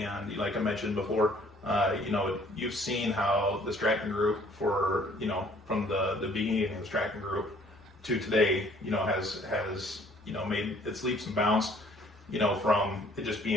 like I mentioned before, you've seen how the Stratton Group from the beginning of the Stratton Group to today, has made its leaps and bounds, from it just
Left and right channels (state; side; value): normal; both; correlation 0.58